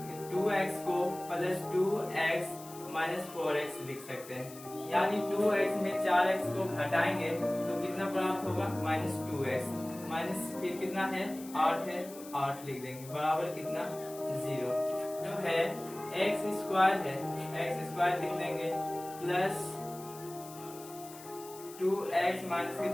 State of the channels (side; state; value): left; noise; hiss, 17 dB below the sound